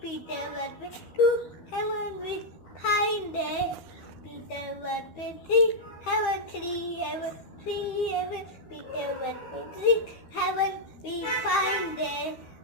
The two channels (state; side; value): late; right; 12 ms